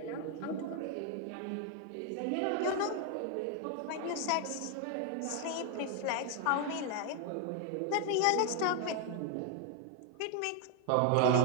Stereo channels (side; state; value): both; different; correlation 0.01